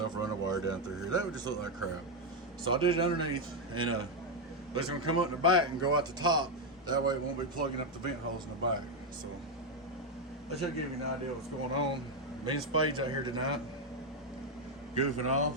run a wire down through here. That would just look like crap. So I did it underneath, and it's gonna come up in the back and go out the top. That way it won't be plugging up the vent holes in the back. So that should give you an idea of what's going on. Me and Spade's out here tonight, goofing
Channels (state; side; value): normal; both; correlation 0.04